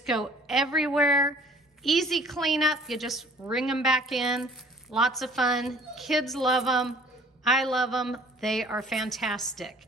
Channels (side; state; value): both; normal; correlation 0.53